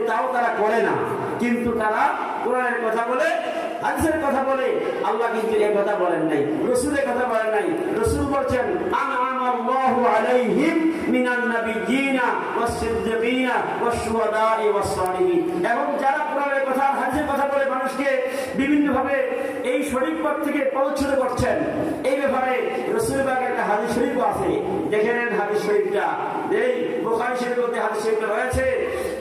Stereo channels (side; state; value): both; identical; correlation 1.00